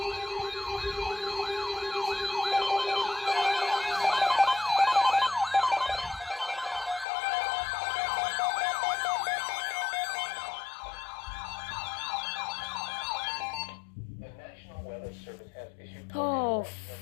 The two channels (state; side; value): drops out; right; at 7.1 s